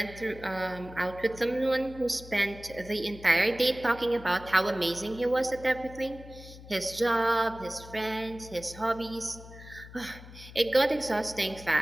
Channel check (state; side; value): noise; left; hum, 16 dB below the sound